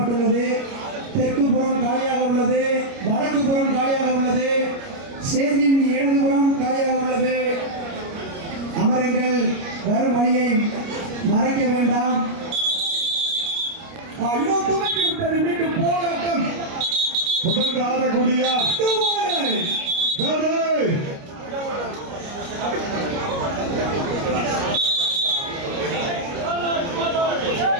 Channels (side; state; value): left; late; 29 ms